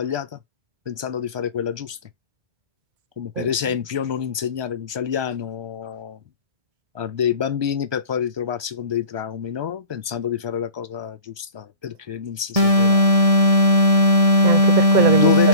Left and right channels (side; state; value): left; late; 1.2 ms